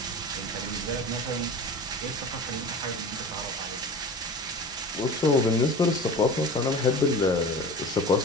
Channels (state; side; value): normal; both; correlation 0.35